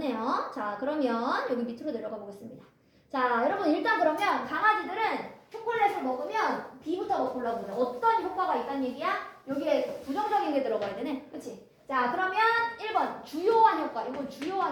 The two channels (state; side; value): identical; both; correlation 1.00